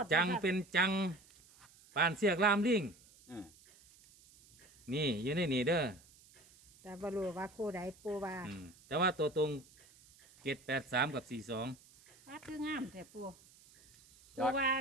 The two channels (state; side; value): noise; right; hiss, 26 dB below the sound